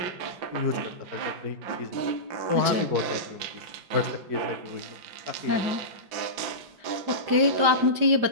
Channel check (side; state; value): left; late; 5.0 ms